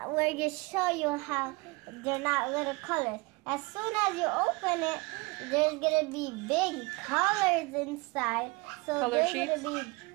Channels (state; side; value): quieter; left; 25.8 dB